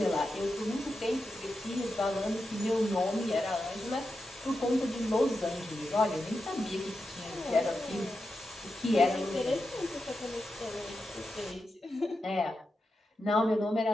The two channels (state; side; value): normal; both; correlation 0.89